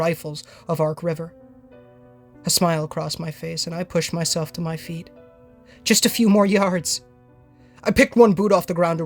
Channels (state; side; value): identical; both; correlation 1.00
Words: of Ark River. A smile crossed my face, and I pushed myself to my feet. Just a few more yards. I picked one boot off the ground to